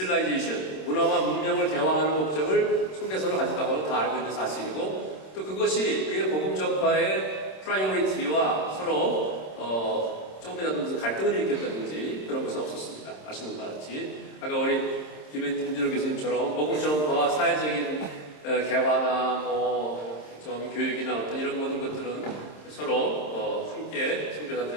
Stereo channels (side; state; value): right; late; 26 ms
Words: 문화와 문명을 대화하는 목적을 속내서로 가졌다고는 다 알고 있는 사실이고 또 그것이 그의 복음 전파의 프라이오리티와 서로 조금이라도 무슨 갈등을 일으켰다든지 그런 것은 없었습니다. 아시는 바와 같이 아까 우리 김진호 교수님처럼 복음 전파와 사회적인 개화나 좀 교육이나 어떤 이런 모든 것들은 서로 함께